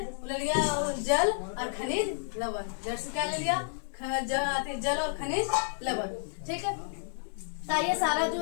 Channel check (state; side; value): silent; right; digital silence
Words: ले लिया जल और खनिज लवण, जड़ से क्या ले लिया, जल और खनिज लवण, ठीक है। तो ये सारा जो